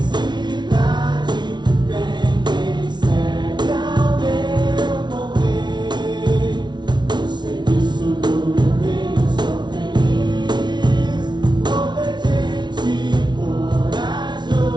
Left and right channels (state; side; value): late; left; 0.21 ms